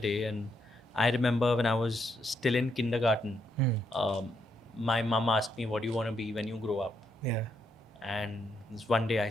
And I remember when I was still in kindergarten, my mom asked me, "What do you want to be when you grow up?" Yeah. And this one day I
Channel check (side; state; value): both; normal; correlation 0.78